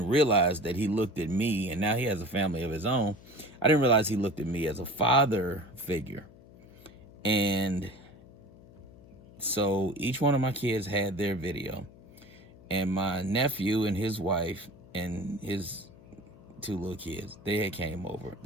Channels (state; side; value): noise; left; hum, 22 dB below the sound